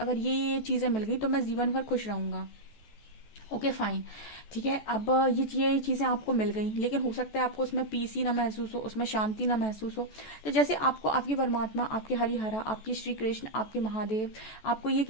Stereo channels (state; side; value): late; right; 14 ms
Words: ये चीजें मिल गई तो मैं जीवन भर खुश रहूंगा। Okay fine. ठीक है, अब ये चीजें आपको मिल गई, लेकिन हो सकता है आपको उसमें पीस ही ना महसूस हो, उसमें शांति ना महसूस हो। तो जैसे आपको आपकी परमात्मा, आपके हरिहरा, आपके श्री कृष्ण, आपके महादेव आपको ये